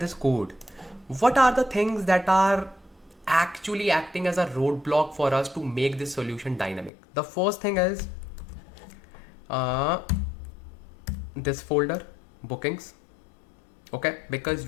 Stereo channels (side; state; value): right; drops out; at 6.9 s